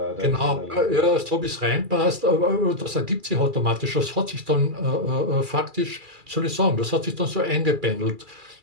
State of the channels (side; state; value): left; late; 2.3 ms